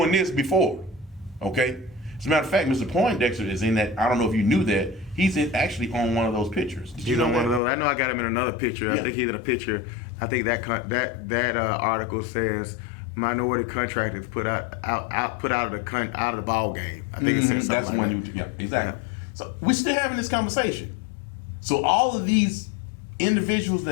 this before, okay? As a matter of fact, Mr. Poindexter is in that. I don't know if you knew that. He's actually on one of those pictures. Did you know one that? of those. I know I got him in another picture. Yeah. I think he's in a picture. I think that article says minority contractors put out of the ball game. I think it says something That's like one that. yeah, exactly. So we're still having this conversation. So all of these individuals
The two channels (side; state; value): right; drops out; at 7.6 s